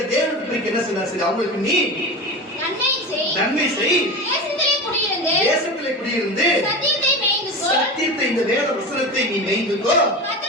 தேவனை பிரிக்க என்ன சொன்னாலும் சரி, அவங்களுக்கு நீ நன்மை செய், தேசத்திலே குடியிருந்து சத்தியத்தை இந்த வேத வசனத்தை நீ மேய்ந்துக்கோ,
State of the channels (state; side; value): normal; both; correlation 0.26